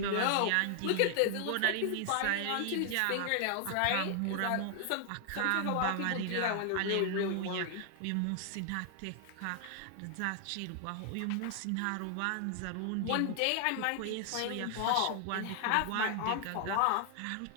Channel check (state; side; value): different; both; correlation 0.00